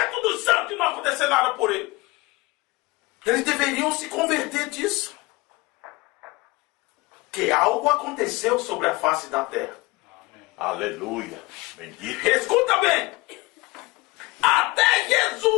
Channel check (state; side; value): quieter; right; 22.7 dB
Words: dos santos não acontecer nada por ele. Eles deveriam se converter disso. Que algo aconteceu sobre a face da terra. Aleluia. Bendito. Escuta bem. Até